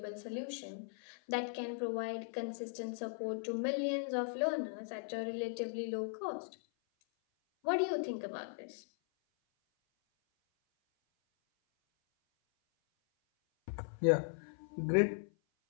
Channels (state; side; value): silent; right; 52 dB below the other